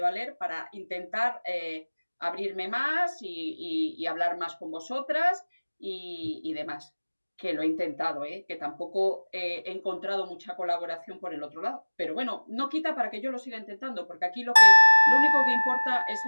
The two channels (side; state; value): both; inverted; correlation -1.00